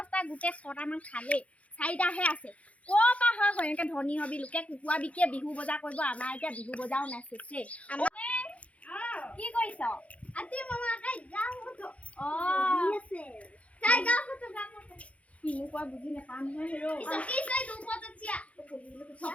গোটেই 6টামান খালে 4টাহে আছে ক'ৰ পৰা হয় এনেকে ধনী হবি লোকে কুকুৰা বিকিয়ে বিহু বজাৰ কৰিব আমাৰ এতিয়া বিহু বজাৰো নাচিছে কি কৰিছ আজি মামা কাই যাওঁ আছে কিনোকুৱা বুজি নাপাম নহয় হেৰ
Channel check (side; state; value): right; late; 0.065 ms